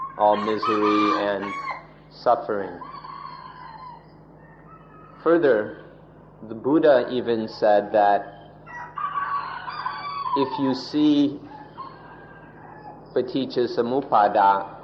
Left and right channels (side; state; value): both; identical; correlation 1.00